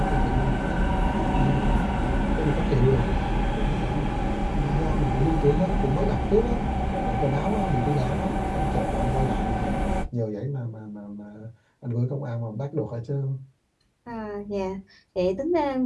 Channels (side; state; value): both; identical; correlation 1.00